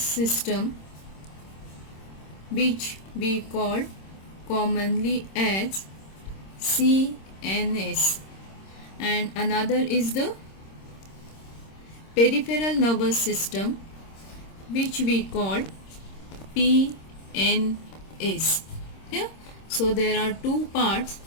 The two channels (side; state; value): right; late; 26 ms